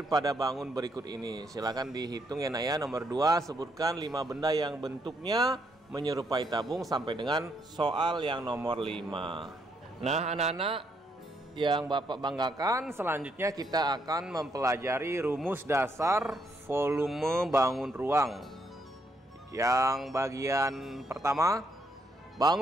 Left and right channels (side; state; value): both; normal; correlation 0.74